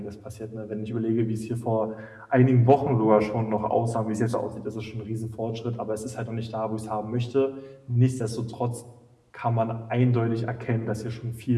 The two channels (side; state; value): both; identical; correlation 1.00